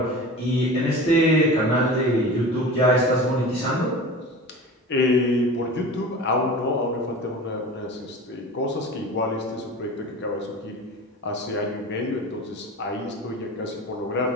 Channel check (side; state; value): both; normal; correlation 0.35